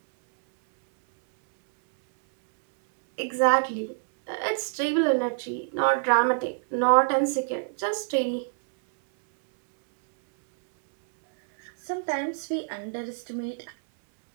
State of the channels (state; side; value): silent; left; 61 dB below the other